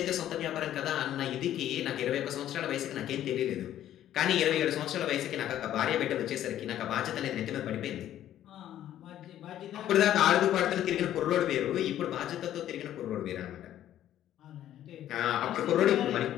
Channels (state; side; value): quieter; right; 11.9 dB